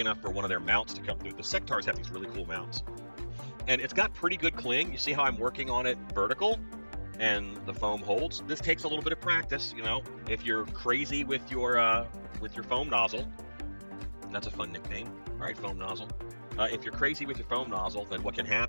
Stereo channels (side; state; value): both; inverted; correlation -1.00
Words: for one of their mounts to come through. The sectars have these really cool mounts. And it's got pretty good cling. You see how I'm working on it vertical, and the foam holds. This takes a little bit of practice, If you're crazy with your foam nozzle, that's a fun nickname. All right, foam nozzle. If you're crazy with your foam nozzle, then what can